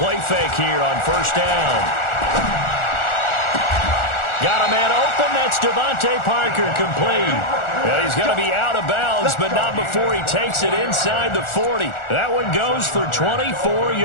fake here on first down. Got a man open. That's Devontae Parker, complete. Yeah, he's going to be out of bounds, but not before he takes it inside the 40. That one goes for 24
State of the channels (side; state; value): right; late; 1.4 ms